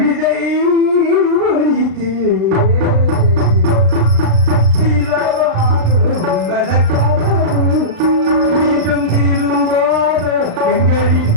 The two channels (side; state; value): left; late; 36 ms